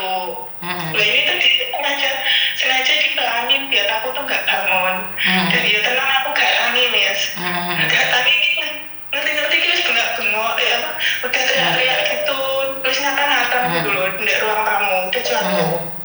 Nah, ini tuh sengaja dipelanin biar aku tuh nggak bangun. Dan ya tenang, aku gak angin ya. Gak angin ngerti terus bengak-bengok udah teriak-teriak gitu, terus ngata-ngata gitu loh di ruang tamu, udah jatuh.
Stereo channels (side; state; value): both; identical; correlation 1.00